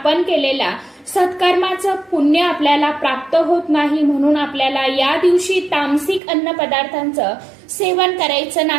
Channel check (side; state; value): left; drops out; at 6.2 s